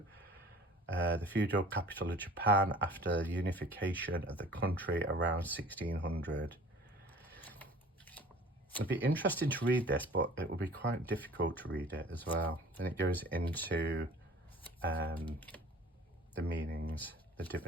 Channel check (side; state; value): both; normal; correlation 0.47